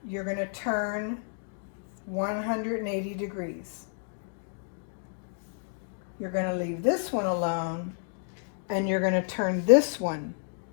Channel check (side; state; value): right; silent; digital silence